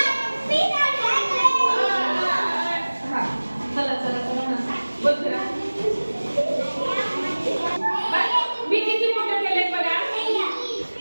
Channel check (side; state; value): both; inverted; correlation -1.00